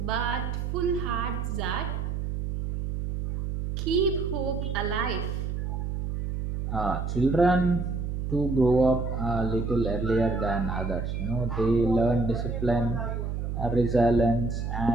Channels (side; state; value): right; noise; hum, 3 dB below the sound